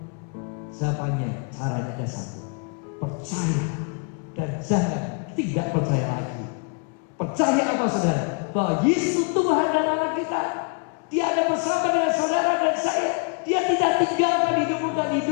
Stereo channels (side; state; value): right; quieter; 37.3 dB